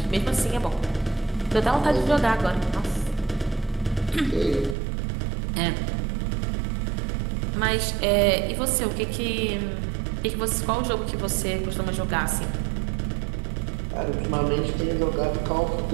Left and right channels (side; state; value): left; drops out; at 4.8 s